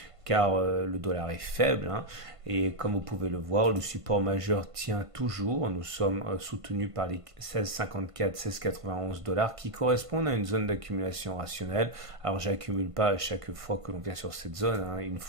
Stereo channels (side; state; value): left; late; 1.5 ms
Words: car le dollar est faible, hein, et comme vous pouvez le voir, le support majeur tient toujours. Nous sommes soutenus par les 16,54, 16,91 dollars qui correspondent à une zone d'accumulation rationnelle. Alors j'accumule pas à chaque fois que l'on vient sur cette zone, hein, une